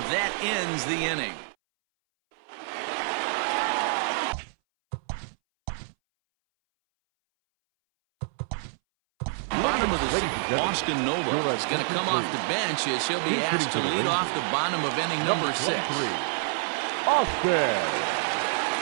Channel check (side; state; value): left; silent; 60 dB below the other